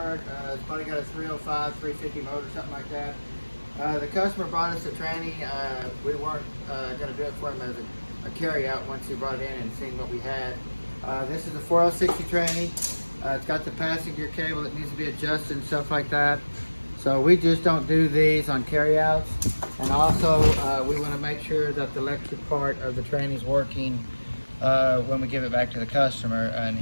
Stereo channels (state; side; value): inverted; both; correlation -1.00